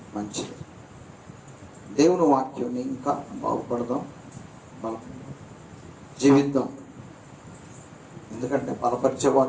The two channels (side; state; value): both; identical; correlation 1.00